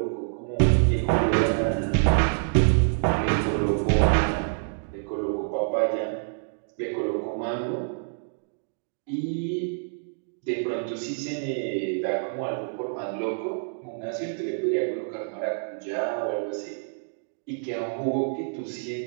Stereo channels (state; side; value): silent; left; digital silence